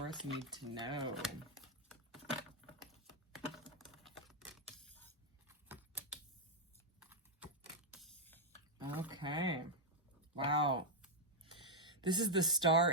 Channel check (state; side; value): normal; both; correlation -0.01